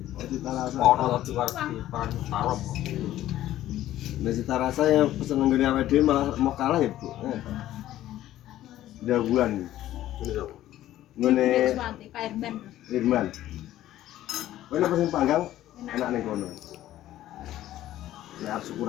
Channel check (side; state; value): right; quieter; 13.6 dB